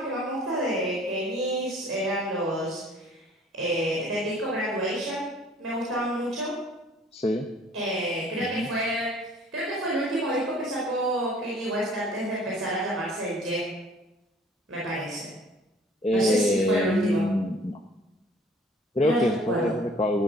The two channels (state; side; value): normal; both; correlation 0.53